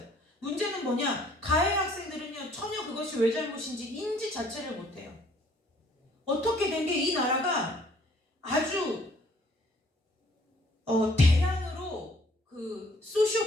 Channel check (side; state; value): both; normal; correlation 0.60